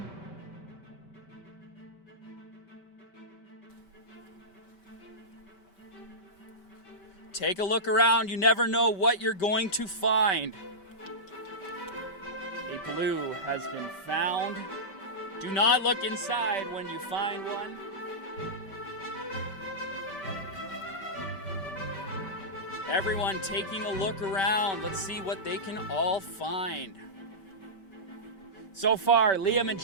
Take a look around, you never know what you're going to find. A blue has been found. Do not look inside when you find one. Everyone taking a look around. Let's see what they can all find. So far, Liam and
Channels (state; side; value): late; right; 5.2 ms